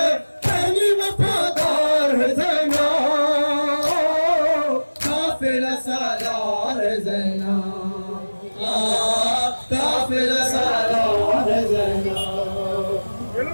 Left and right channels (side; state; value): both; inverted; correlation -1.00